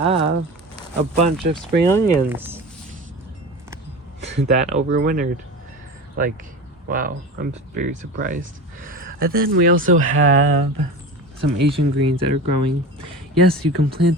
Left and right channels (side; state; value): both; normal; correlation 0.31